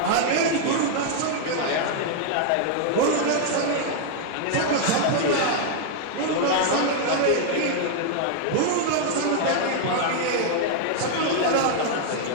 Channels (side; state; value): both; different; correlation 0.00